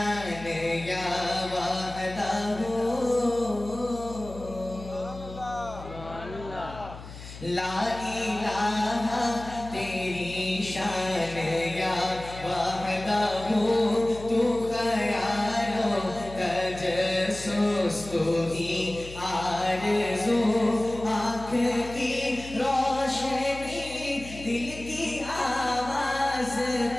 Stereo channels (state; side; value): noise; left; hum, 14 dB below the sound